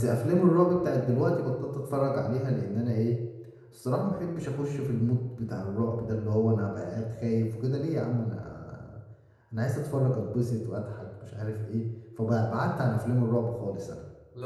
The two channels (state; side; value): identical; both; correlation 1.00